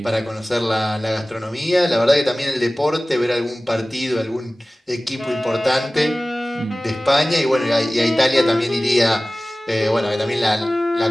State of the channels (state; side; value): normal; both; correlation 0.97